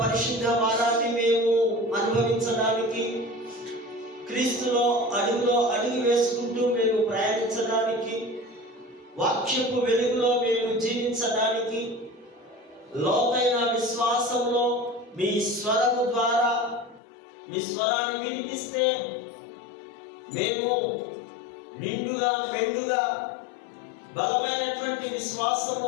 పరిశుద్ధ వారాన్ని మేము అనుభవించడానికి, క్రీస్తులో అడుగులో అడుగు వేసుకుంటూ మేము ప్రయాణించడానికి, వాక్యపు వెలుగులో మేము జీవించడానికి, లోతైన విశ్వాసంలో మీ స్వరము ద్వారా మీ స్వరాన్ని వినిపిస్తే మేము నిండుగా మెండుగా బలమైనటువంటి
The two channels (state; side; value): drops out; right; at 17.0 s